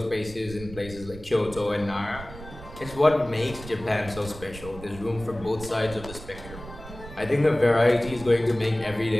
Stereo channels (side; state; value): right; noise; rumble, 15 dB below the sound